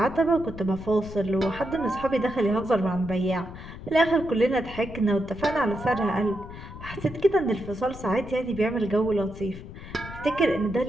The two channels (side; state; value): left; noise; rumble, 13 dB below the sound